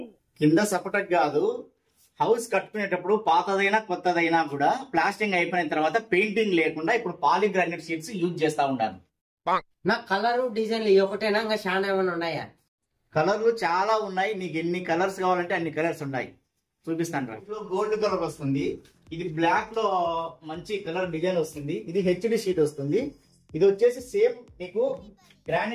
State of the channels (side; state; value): both; identical; correlation 1.00